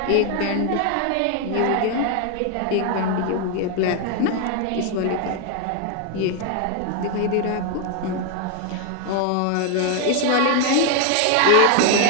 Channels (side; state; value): both; different; correlation 0.01